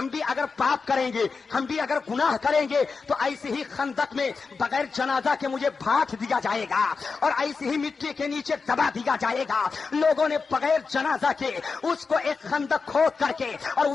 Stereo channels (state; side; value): quieter; right; 4.7 dB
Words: بھی اگر پاپ کریں گے, ہم بھی اگر گناہ کریں گے تو ایسے ہی خندق میں بغیر جنازہ کے مجھے بھاٹ دیا جائے گا اور ایسے ہی مٹی کے نیچے دبا دیا جائے گا. لوگوں نے بغیر جنازہ کے اس کو ایک خندق کھود کر کے اور